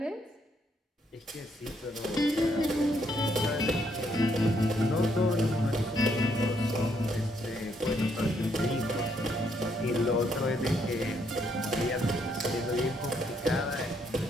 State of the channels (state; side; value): normal; both; correlation 0.73